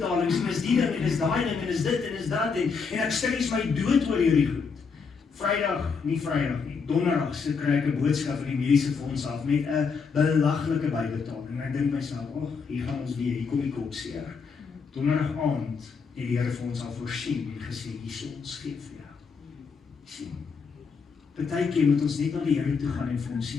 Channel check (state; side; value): quieter; right; 5.4 dB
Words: en is die ding, en is daai ding, en is dit, en is dat, en ek stres my dood oor hierdie goed. Vrydag nie, donderdag so kry ek 'n boodskap van die mediese fonds af, met 'n belaglike bybetaling, en ek dink myself, hier gaan ons weer, hier kom die kopseer. Donderdag aand, het die Here vir ons al voorsien, en gesê, hier ons gee vir jou. Sien. Partykeer moet ons net na die Here toe gaan en vir ons sê,